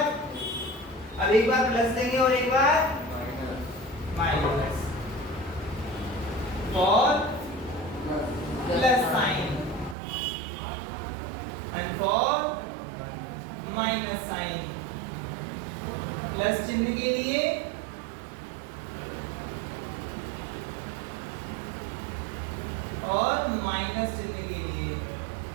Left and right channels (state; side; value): drops out; left; at 10.0 s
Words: अब एक बार प्लस देंगे और एक बार minus for plus sign and for minus sign. Plus चिन्ह के लिए और माइनस चिन्ह के लिए।